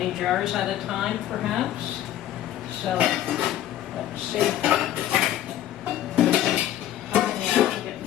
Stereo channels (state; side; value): quieter; right; 12.4 dB